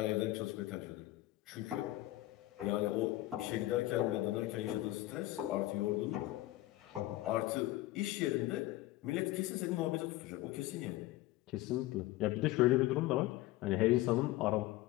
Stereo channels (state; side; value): quieter; right; 17.1 dB